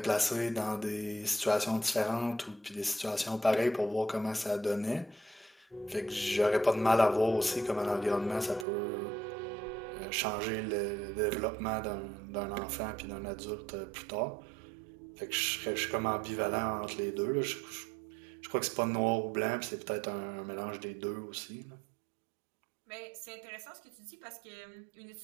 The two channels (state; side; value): drops out; left; at 8.7 s